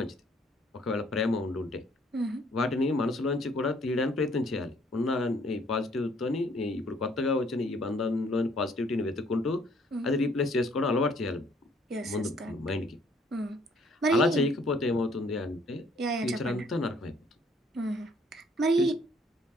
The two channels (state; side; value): normal; both; correlation 0.63